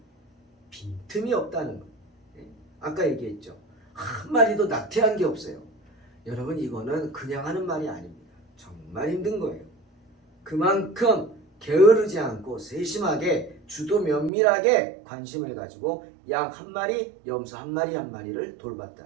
빈틈이 없다는 거예요. 아까 얘기했죠. 한 마리도 낙태한 게 없어요. 여러분, 이거는 그냥 하는 말이 아닙니다. 정말 힘든 거예요. 그만큼 게으르지 않고 세심하게 주도 면밀하게 관심을 가지고 양 한 마리, 염소 한 마리 한 마리를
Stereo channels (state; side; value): drops out; left; at 14.3 s